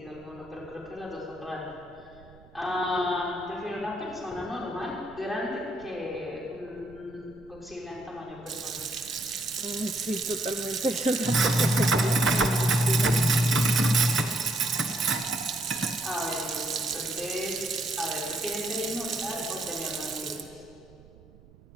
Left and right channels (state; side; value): noise; right; rumble, 24 dB below the sound